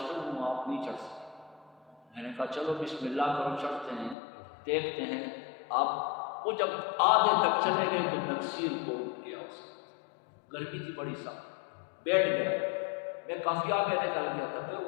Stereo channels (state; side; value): drops out; right; at 4.2 s